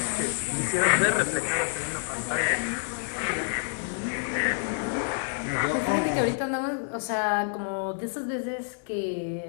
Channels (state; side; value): silent; right; digital silence